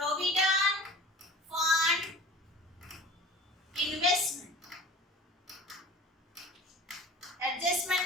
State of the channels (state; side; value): normal; both; correlation 0.41